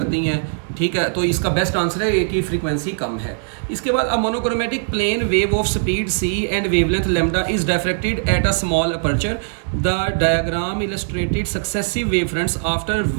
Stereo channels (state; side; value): silent; left; digital silence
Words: हैं, ठीक है। तो इसका बेस्ट आंसर है ए की फ्रीक्वेंसी कम है। इसके बाद a monochromatic plane wave of speed c and wavelength lambda is diffracted at a small aperture, the diagram illustrated successive wave fronts, after